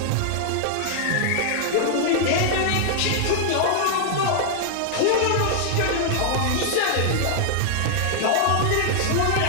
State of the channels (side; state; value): both; different; correlation -0.01